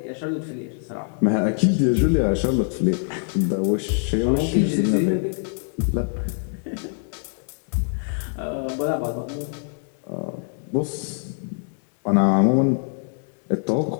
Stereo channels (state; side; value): silent; right; 58 dB below the other